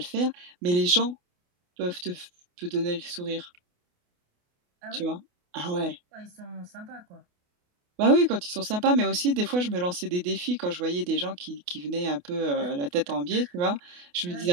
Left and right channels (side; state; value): left; late; 28 ms